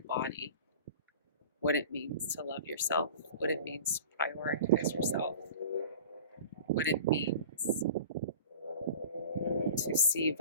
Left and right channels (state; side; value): inverted; both; correlation -0.39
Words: what it means to love yourself, what it means to prioritize yourself, what it means to see